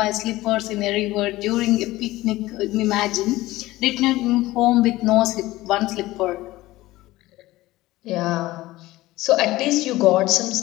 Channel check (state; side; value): quieter; right; 17.8 dB